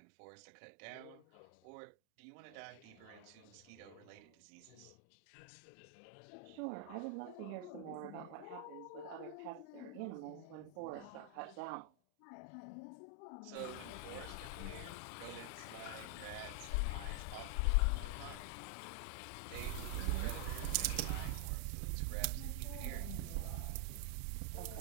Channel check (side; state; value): both; different; correlation 0.00